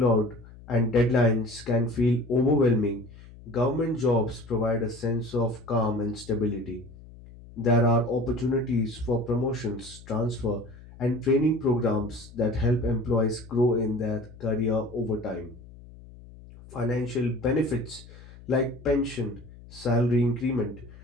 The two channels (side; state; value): left; noise; hum, 19 dB below the sound